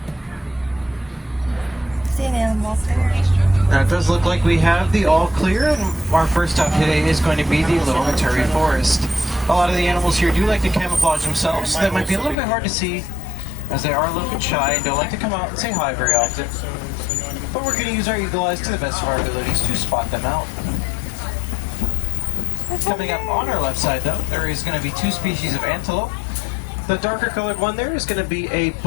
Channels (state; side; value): drops out; right; at 12.4 s